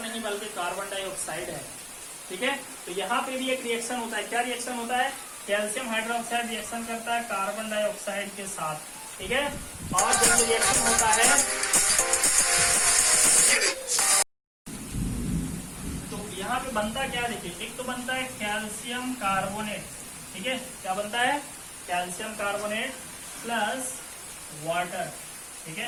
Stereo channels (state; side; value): identical; both; correlation 1.00